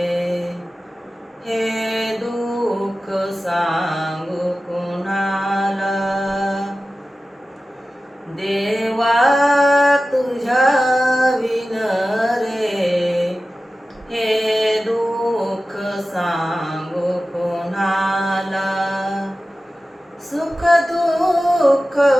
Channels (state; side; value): normal; both; correlation 0.95